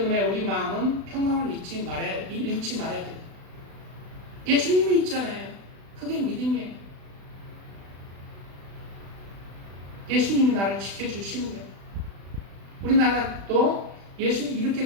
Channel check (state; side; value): late; left; 36 ms